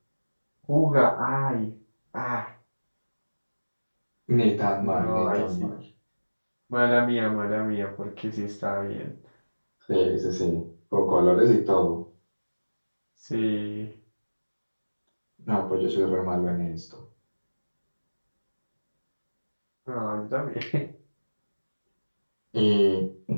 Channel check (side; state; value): both; inverted; correlation -1.00